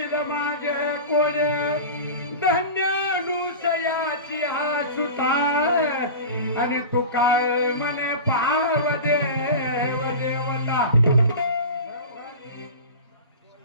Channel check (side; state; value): both; inverted; correlation -0.31